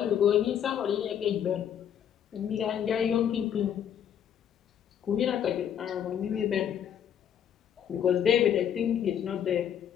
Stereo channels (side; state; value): right; quieter; 9.2 dB